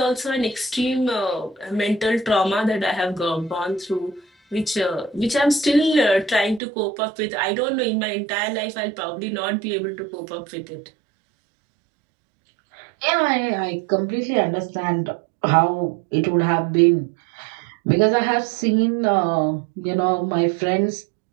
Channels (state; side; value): drops out; left; at 6.6 s